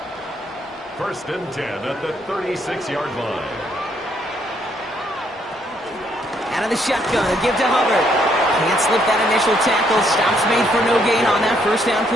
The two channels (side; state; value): both; normal; correlation 0.71